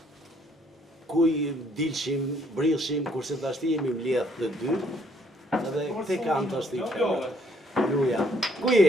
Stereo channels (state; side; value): normal; both; correlation 0.66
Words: ku i dilshim, brillshim, kurse tashti jemi mbledh të dy. Edhe këte kanë tashti. Luja. Ku